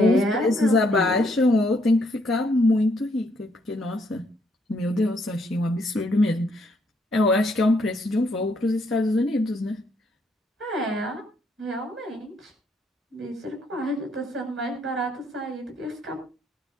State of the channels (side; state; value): both; normal; correlation 0.71